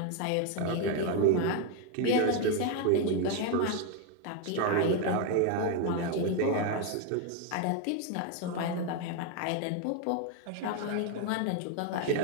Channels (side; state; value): both; different; correlation 0.01